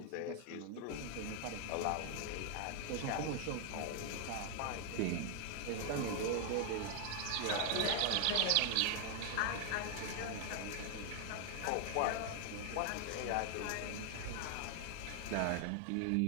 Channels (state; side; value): different; both; correlation 0.00